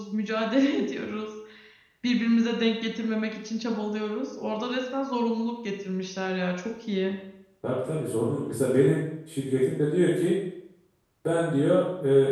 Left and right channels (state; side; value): identical; both; correlation 1.00